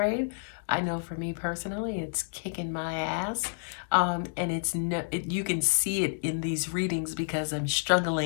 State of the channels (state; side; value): silent; right; digital silence